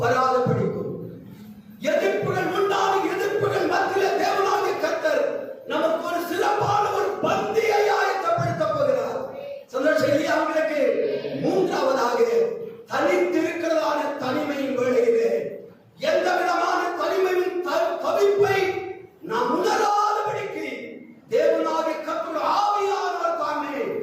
வராத படிக்கும். எதிர்ப்புகள் உண்டான எதிர்ப்புகள் மத்தியிலே தேவனாகிய கர்த்தர் நமக்கு ஒரு சிறப்பான ஒரு பந்தியை ஆயத்தப்படுத்த போகிறார். சந்தோஷம் இல்லையா உங்களுக்கு? மூன்றாவதாக தனித்திருக்கிறதான தனிமையின் வேளையிலே எந்த விதமான தனிமையின் தவிப்பை நாம் உணராதபடிக்கு தேவனாகிய கர்த்தர் ஆவியானவர் தாமே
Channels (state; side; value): identical; both; correlation 1.00